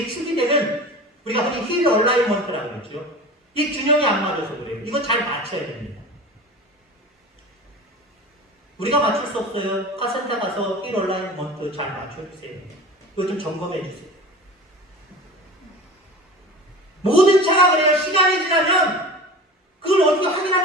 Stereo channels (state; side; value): normal; both; correlation 0.35